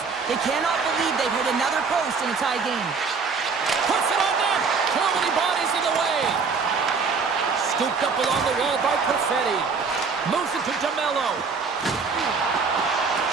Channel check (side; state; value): left; quieter; 5.1 dB